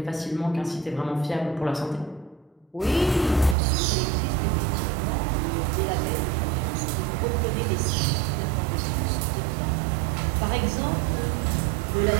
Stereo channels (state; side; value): drops out; left; at 3.6 s